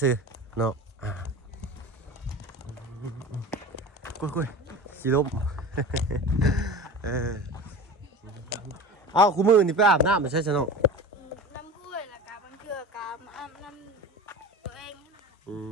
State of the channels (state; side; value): normal; both; correlation 0.33